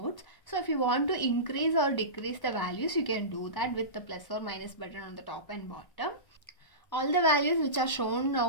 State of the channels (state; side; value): late; right; 1.0 ms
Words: So if you want to increase or decrease the values, you can do that with the plus or minus button on the top and bottom. All the values which are shown